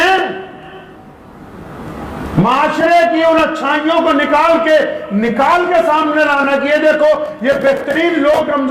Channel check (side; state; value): both; identical; correlation 1.00